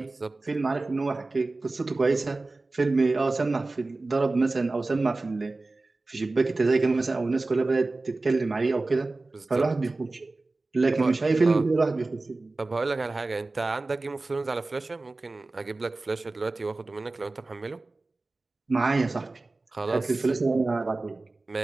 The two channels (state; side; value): quieter; left; 3.3 dB